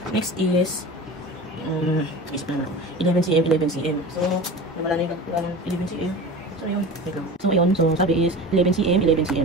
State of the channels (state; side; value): normal; both; correlation 0.34